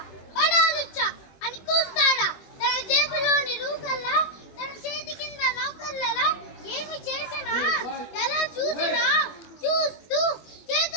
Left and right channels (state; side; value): late; right; 21 ms